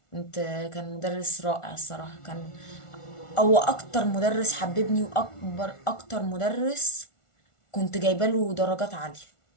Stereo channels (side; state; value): right; late; 1.4 ms